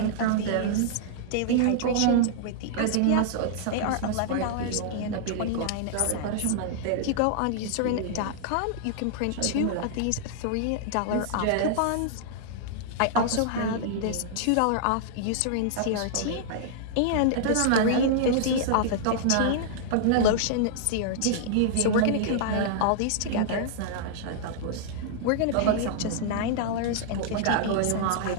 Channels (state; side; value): different; both; correlation -0.01